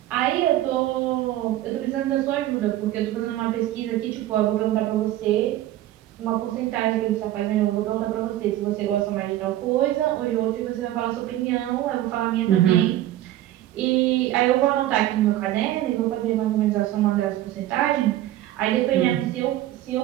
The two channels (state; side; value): quieter; left; 14.0 dB